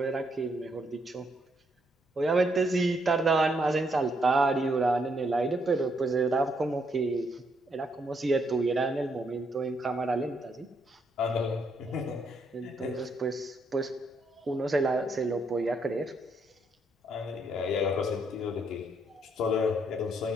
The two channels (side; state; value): both; normal; correlation 0.74